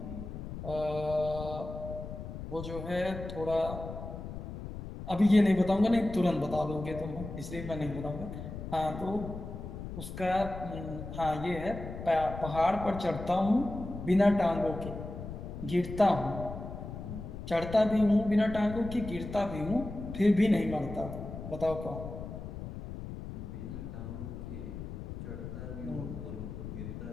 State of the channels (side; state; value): left; noise; rumble, 9 dB below the sound